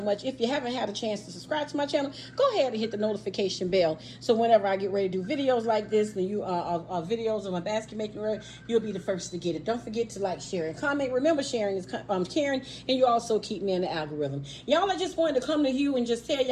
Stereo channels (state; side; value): identical; both; correlation 1.00